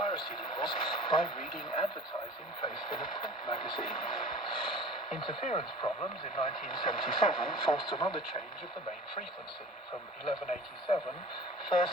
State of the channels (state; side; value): normal; both; correlation 0.41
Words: laws by reading advertising placed in a print magazine. Interference problems in 1977 forced another change of the main frequency from 1187 first